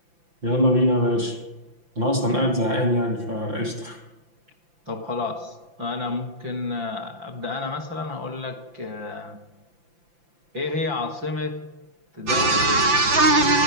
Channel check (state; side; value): late; left; 5.9 ms